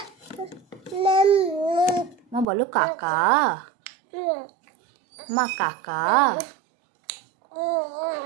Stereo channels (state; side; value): drops out; left; at 2.5 s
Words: মা বলো কাকা মা কাকা